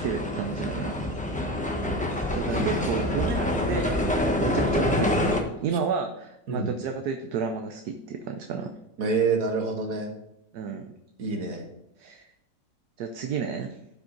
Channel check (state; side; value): normal; both; correlation 0.23